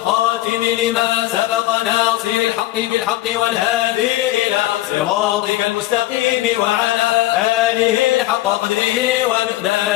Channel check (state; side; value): quieter; right; 16.2 dB